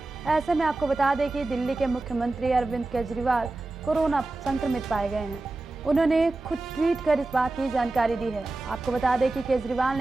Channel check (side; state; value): left; quieter; 3.1 dB